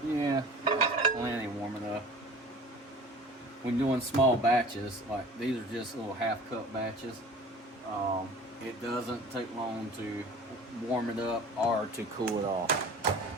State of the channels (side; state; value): both; normal; correlation 0.43